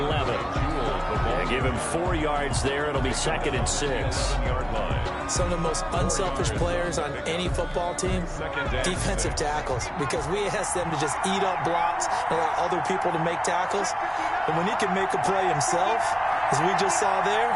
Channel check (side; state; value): both; identical; correlation 1.00